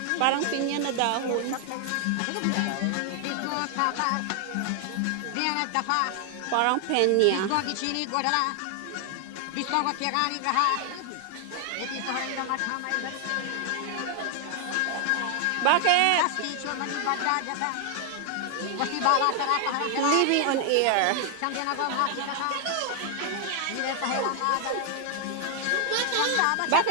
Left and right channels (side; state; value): both; different; correlation 0.00